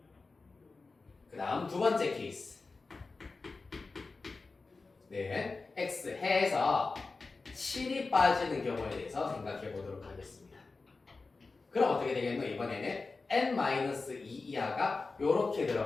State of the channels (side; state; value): right; quieter; 3.9 dB